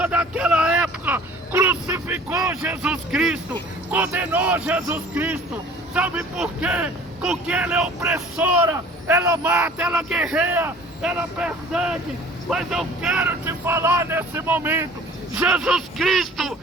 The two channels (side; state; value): both; normal; correlation 0.48